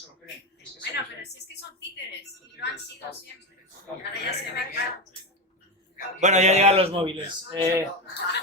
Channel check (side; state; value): both; normal; correlation 0.15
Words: lo creen. Bueno, pero si es que son títeres, y lo han sido siempre. Ahora ya se ve claro. Bueno, ya llegan los móviles. Una